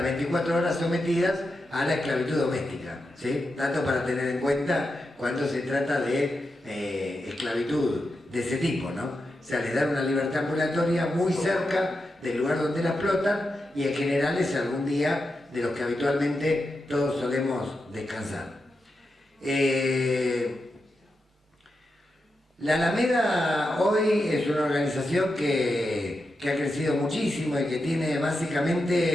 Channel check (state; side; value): normal; both; correlation 0.88